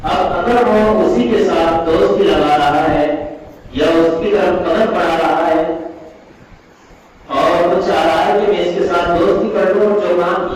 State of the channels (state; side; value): identical; both; correlation 1.00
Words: اب اگر وہ اسی کے ساتھ دوستی لگا رہا ہے یا اس کی طرف قدم بڑھا رہا ہے اور وہ چاہ رہا ہے کہ میں اس کے ساتھ دوستی کر لوں، جو کام